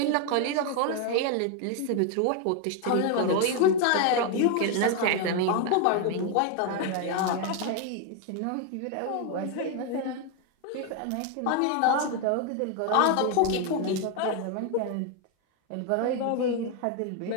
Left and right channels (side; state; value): both; different; correlation 0.01